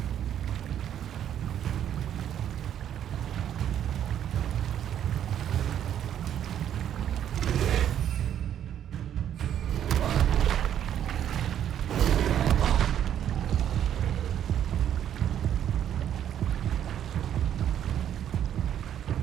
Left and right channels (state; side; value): quieter; left; 10.1 dB